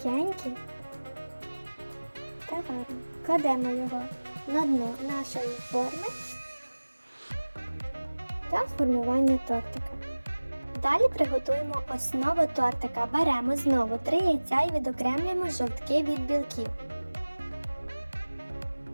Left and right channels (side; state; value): both; inverted; correlation -1.00